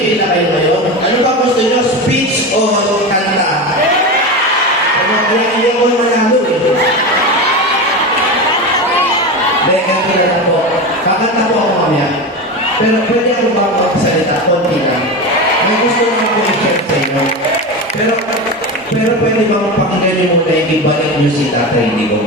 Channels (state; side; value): normal; both; correlation 0.22